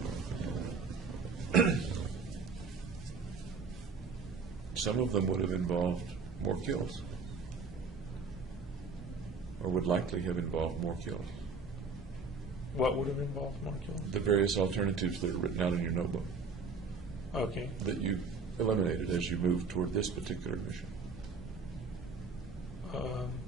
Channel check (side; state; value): left; quieter; 4.6 dB